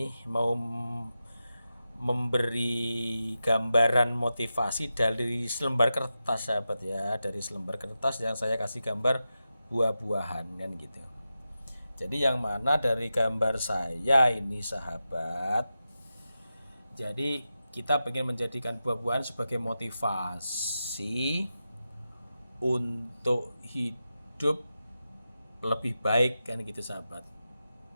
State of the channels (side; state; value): both; inverted; correlation -0.91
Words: mau memberi gambaran motivasi dari selembar kertas sahabat ya, dari selembar kertas yang saya kasih gambar buah-buahan kan gitu. Jadi yang mana dari gambar saya ini sahabat, jadi kita pengen menjadikan buah-buahan sebagai motivasi untuk hidup lebih baik kan gitu sahabat.